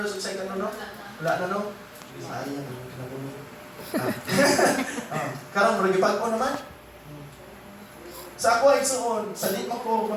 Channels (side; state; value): both; identical; correlation 1.00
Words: o second, no? Wala na, no? Sayang, kinabulo. Karon, maragipag ko naman. Sa ako ay suon, sa di mo ko